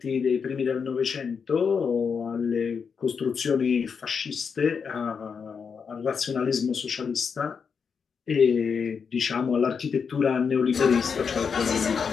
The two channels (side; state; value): right; quieter; 6.1 dB